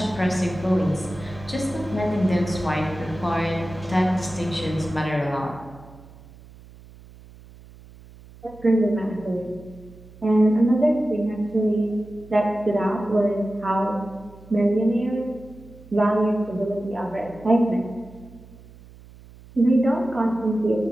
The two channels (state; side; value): noise; right; hum, 21 dB below the sound